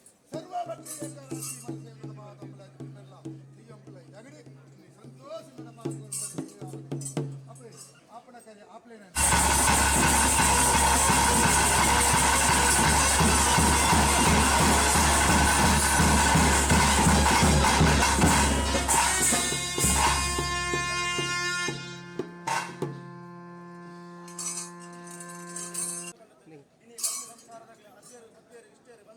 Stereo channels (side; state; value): both; identical; correlation 1.00